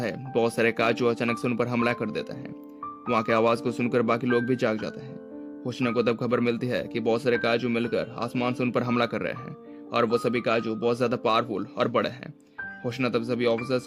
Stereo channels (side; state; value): both; identical; correlation 1.00